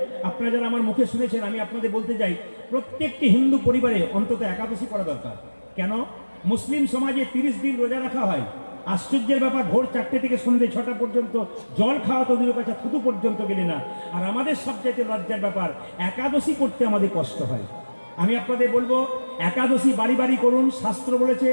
আপনারা যারা আমার মুখে শুনেছেন, আমি আপনাদের বলতে যাই, প্রত্যেকটি হিন্দু পরিবারে অন্তত একাদশী করা দরকার। কেন? মুসলিম সমাজে 30 দিন রোজা রাখা হয়। আশ্চর্যের ব্যাপার, ভোর 4টে থেকে সন্ধ্যে 6টা পর্যন্ত জল খাওয়া তো দূরের কাছে, থুতু পর্যন্ত গেলে না। আর আমাদের সবচাইতে লজ্জার ব্যাপার, একাদশী করতে আমাদের কষ্ট হয়। আমি আপনাদের বলবো, একাদশী বাড়ি বাড়ি করুন। শাস্ত্র বলেছে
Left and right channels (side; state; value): both; inverted; correlation -1.00